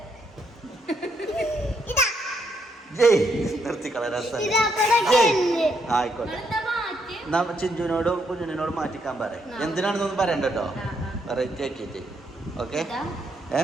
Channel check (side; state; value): both; normal; correlation 0.75